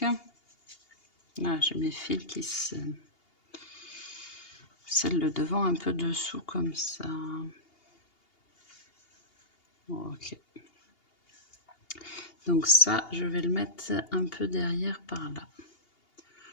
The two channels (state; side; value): late; right; 2.8 ms